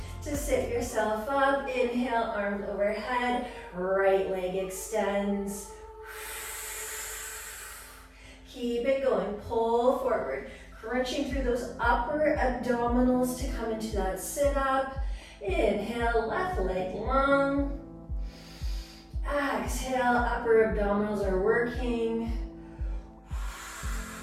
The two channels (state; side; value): identical; both; correlation 1.00